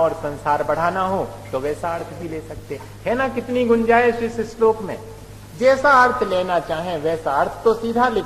संसार बढ़ाना हो तो वैसा अर्थ भी ले सकते है ना। कितनी गुंजाइश इस श्लोक में, जैसा अर्थ लेना चाहें वैसा अर्थ तो सीधा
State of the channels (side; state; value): both; identical; correlation 1.00